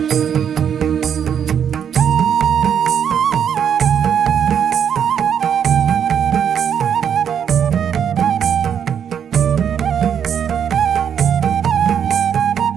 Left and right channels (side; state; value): left; quieter; 8.3 dB